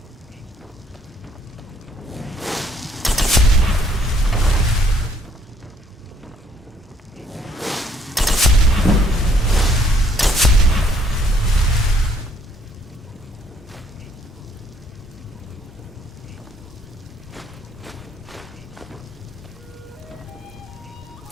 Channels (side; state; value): both; normal; correlation 0.65